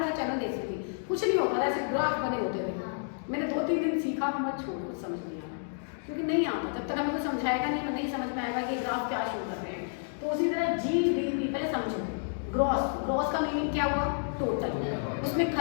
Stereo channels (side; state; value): right; silent; digital silence